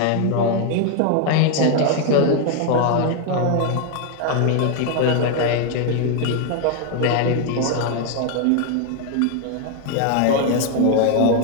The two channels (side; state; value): both; different; correlation 0.01